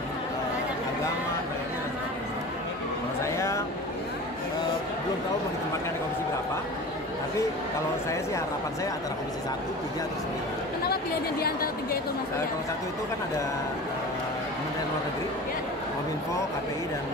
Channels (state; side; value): normal; both; correlation 0.35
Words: agama, dan sebagainya. Kalau saya belum tahu mau ditempatkan di komisi berapa. Tapi kalau saya sih harapan saya antara komisi 1, 3, atau 9. Kenapa pilihannya di antara 3 itu Mas Uya? Kalau 1 itu kan ada Kementerian Luar Negeri, Ya. Kominfo, KPI, dan